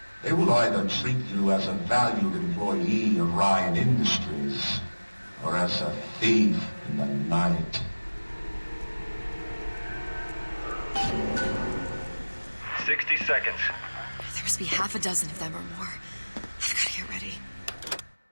They will either treat you as a valued employee of Ryan Industries or as a thief in the night. 60 seconds. There must be half a dozen of them or more. I've got to get ready.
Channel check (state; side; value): inverted; both; correlation -1.00